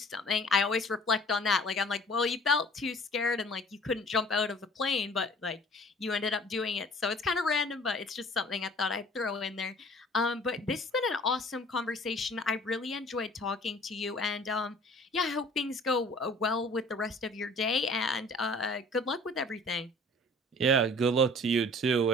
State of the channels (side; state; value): both; normal; correlation 0.50